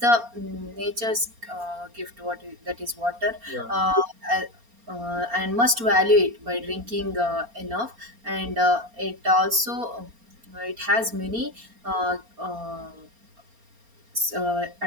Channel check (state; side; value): late; left; 4.3 ms